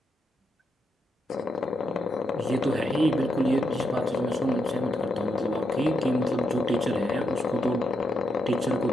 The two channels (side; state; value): both; normal; correlation 0.81